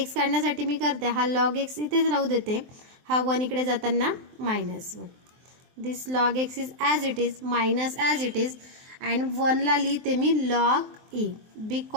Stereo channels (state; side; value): late; left; 23 ms